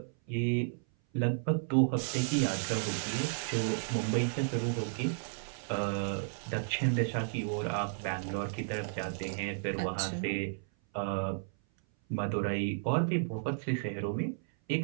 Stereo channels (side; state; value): left; silent; 56 dB below the other